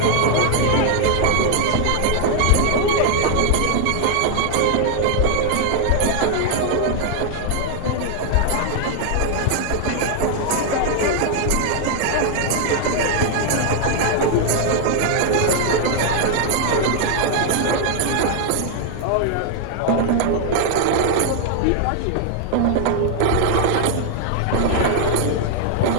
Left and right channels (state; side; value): different; both; correlation 0.00